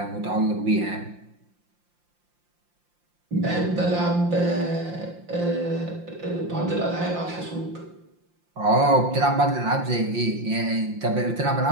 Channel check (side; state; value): left; late; 5.7 ms